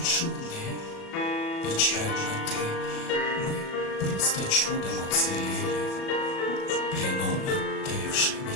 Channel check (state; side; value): late; right; 37 ms